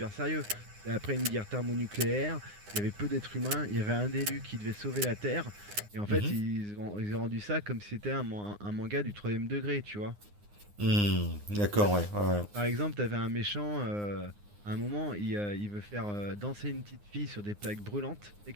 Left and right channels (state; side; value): late; left; 9.7 ms